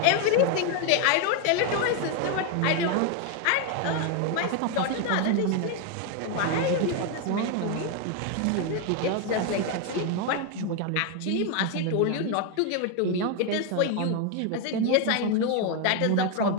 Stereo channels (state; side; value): different; both; correlation 0.01